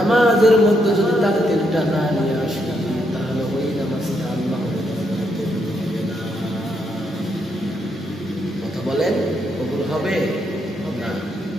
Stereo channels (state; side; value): normal; both; correlation 0.77